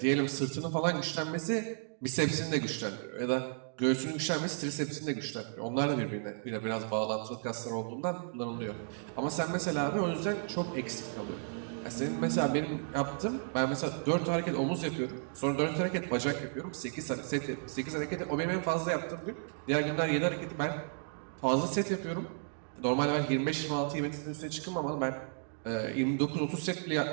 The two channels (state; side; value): silent; left; digital silence